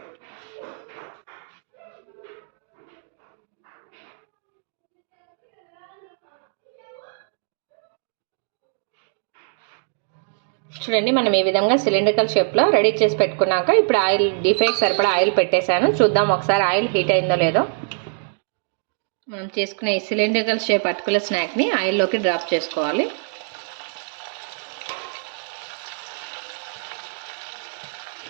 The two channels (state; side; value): silent; left; digital silence